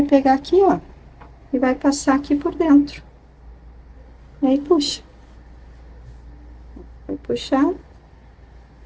pegar aqui, ó, e vai passar aqui por dentro. E aí, puxa. Vai puxar.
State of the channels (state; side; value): identical; both; correlation 1.00